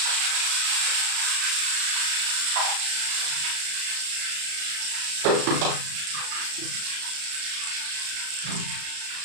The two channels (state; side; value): late; left; 34 ms